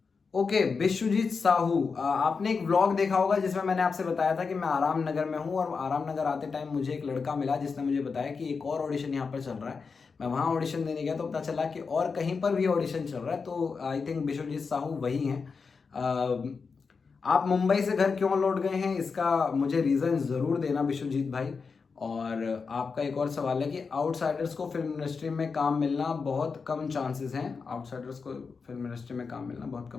ओके, बिशुजीत साहू, आपने एक व्लॉग देखा होगा जिसमें मैंने आपसे बताया था कि मैं आराम नगर में हूँ, और आराम नगर आते टाइम मुझे एक लड़का मिला जिसने मुझे बताया कि एक और ऑडिशन यहाँ पर चल रहा है। मैं वहाँ ऑडिशन देने गया तो पता चला कि और कहीं पर भी ऑडिशन चल रहा है। तो आई थिंक बिशुजीत साहू वही हैं। आप मुंबई से घर क्यों लौट गए हैं, इसका मुझे रीज़न ज़रूर देना बिशुजीत भाई। और आपका एक और सवाल है कि आउटसाइडर्स को फिल्म इंडस्ट्री में काम मिलना बहुत कम चांसेस हैं। आउटसाइडर्स को फिल्म इंडस्ट्री में काम मिलना बहुत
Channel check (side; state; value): right; quieter; 5.1 dB